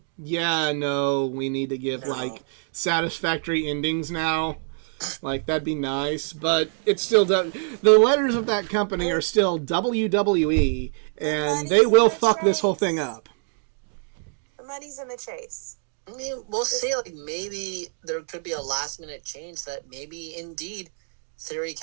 yeah, no, we need to give like satisfactory endings now. Like, that'd be nice, but it's still the letters of that company are still WWE, and they will fuck this whole thing up. The money's in the chase. I mean, we'll see. Like, maybe there could be a last-minute change that maybe, indeed, Theory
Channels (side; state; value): left; silent; 57 dB below the other